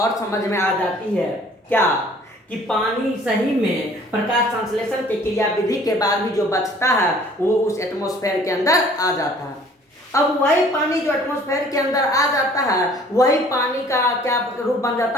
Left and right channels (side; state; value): both; normal; correlation 0.54